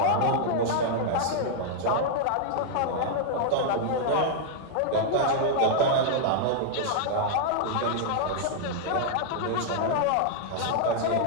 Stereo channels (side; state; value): both; different; correlation -0.01